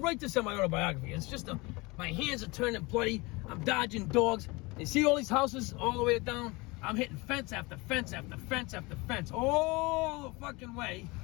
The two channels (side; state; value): right; quieter; 24.8 dB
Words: this in my autobiography. It's just my hands are turning bloody. I'm dodging dogs. You see all these houses all the way down? I'm hitting fence after fence after fence after fence. All the fucking way.